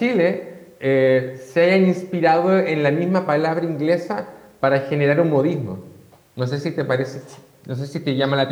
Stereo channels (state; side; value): identical; both; correlation 1.00